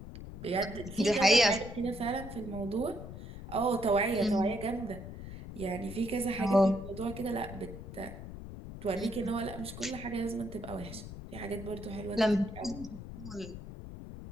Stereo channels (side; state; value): left; noise; rumble, 11 dB below the sound